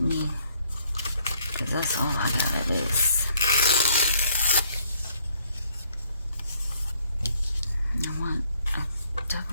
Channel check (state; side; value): inverted; both; correlation -0.66